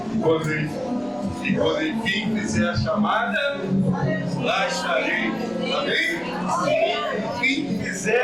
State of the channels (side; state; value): left; noise; rumble, 27 dB below the sound